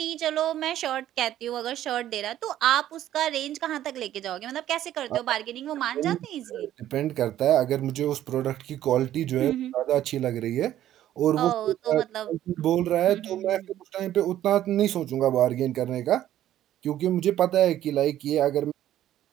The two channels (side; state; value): left; quieter; 12.4 dB